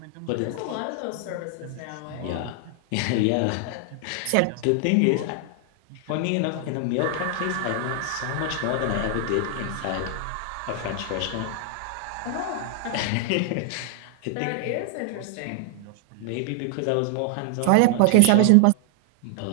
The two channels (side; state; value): both; different; correlation 0.00